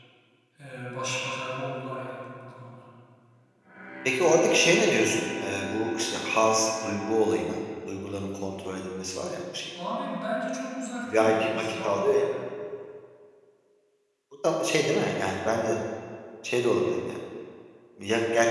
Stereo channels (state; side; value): identical; both; correlation 1.00